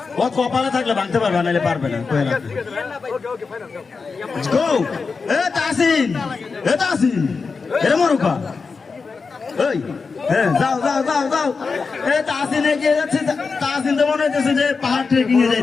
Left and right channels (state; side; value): quieter; right; 4.7 dB